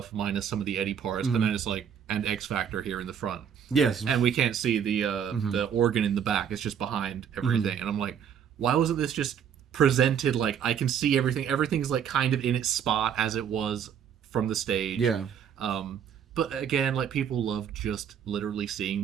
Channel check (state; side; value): quieter; left; 8.2 dB